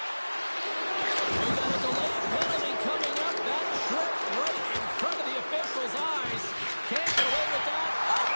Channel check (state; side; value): inverted; both; correlation -1.00